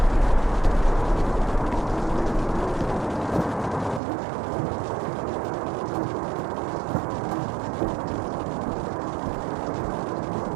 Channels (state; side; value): drops out; left; at 4.0 s